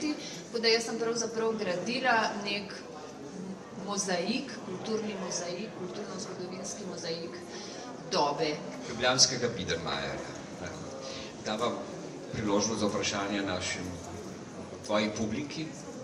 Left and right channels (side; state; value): both; identical; correlation 1.00